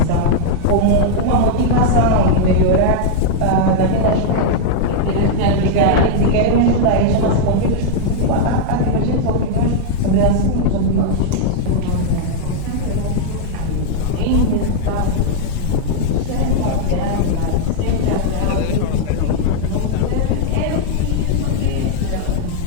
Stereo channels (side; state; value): both; different; correlation -0.01